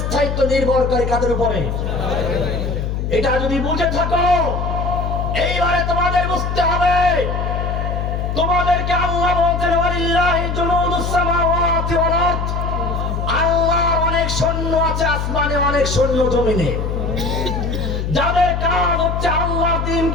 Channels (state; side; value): noise; left; hum, 2 dB below the sound